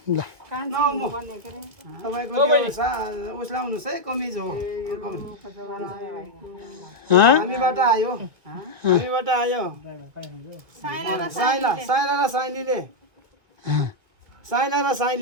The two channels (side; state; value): left; late; 1.6 ms